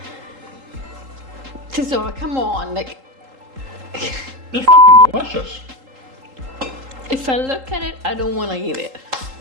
So come on, like It's fucking delicious. if I look at it, I don't want to eat it.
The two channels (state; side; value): late; left; 3.8 ms